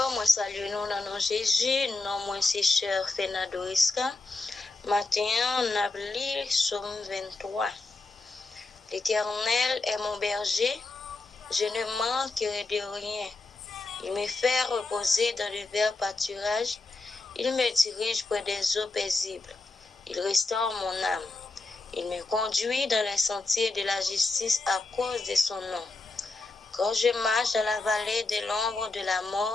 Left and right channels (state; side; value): quieter; right; 3.3 dB